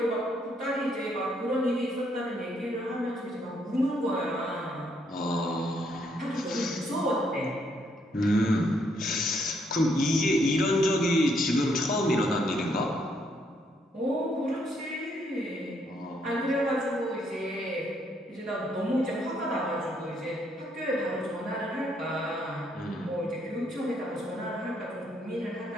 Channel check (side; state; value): both; normal; correlation 0.72